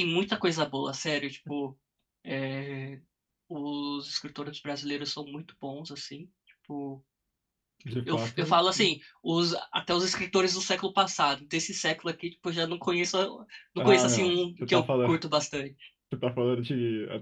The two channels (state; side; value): identical; both; correlation 1.00